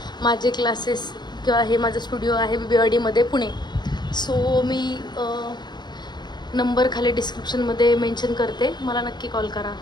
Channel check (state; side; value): late; right; 0.21 ms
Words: माझे क्लासेस किंवा हे माझं स्टुडिओ आहे BBRD पुणे. सो मी नंबर खाली डिस्क्रिप्शनमध्ये मेन्शन करते, मला नक्की कॉल करा.